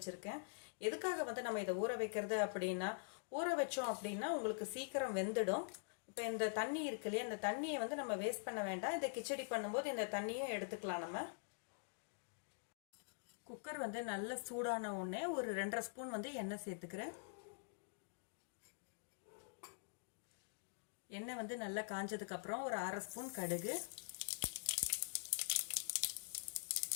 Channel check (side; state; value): right; silent; digital silence